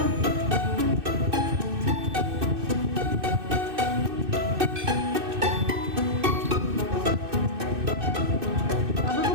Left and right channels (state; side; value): late; left; 2.6 ms